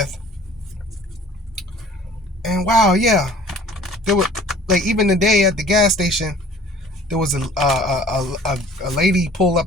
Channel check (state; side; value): normal; both; correlation 0.49